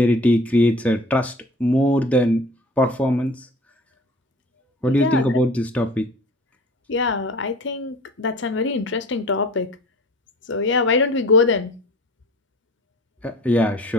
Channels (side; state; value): both; normal; correlation 0.44